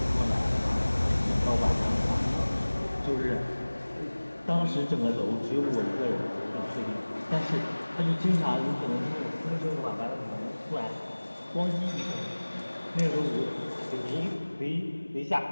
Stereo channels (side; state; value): both; inverted; correlation -1.00